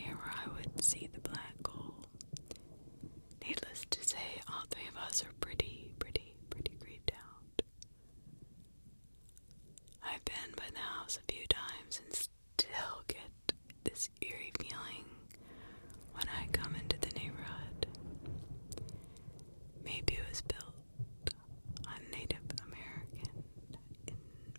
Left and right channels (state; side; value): inverted; both; correlation -1.00